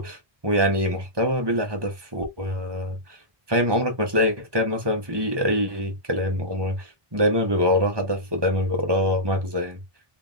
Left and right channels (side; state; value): left; late; 1.2 ms